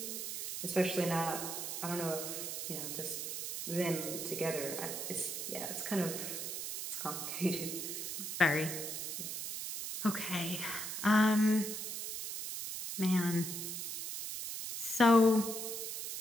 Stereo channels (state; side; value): noise; right; hiss, 4 dB below the sound